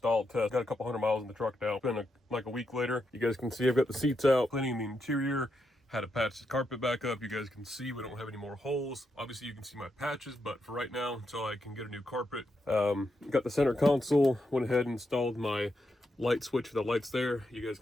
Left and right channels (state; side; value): normal; both; correlation 0.83